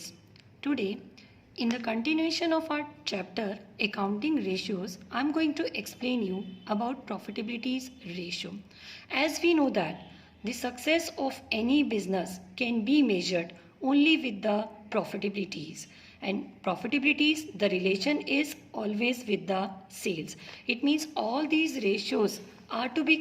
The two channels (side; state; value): both; identical; correlation 1.00